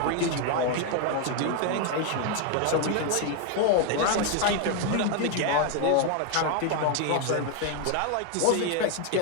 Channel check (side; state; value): both; different; correlation 0.01